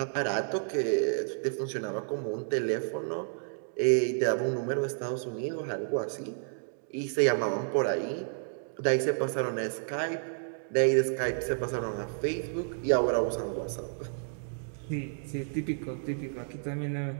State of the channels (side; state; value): left; silent; digital silence